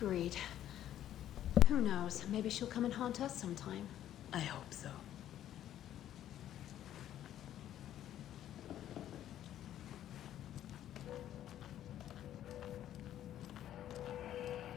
Who knows? Maybe she'll come and haunt us sometime. I hope so.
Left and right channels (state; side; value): quieter; right; 11.7 dB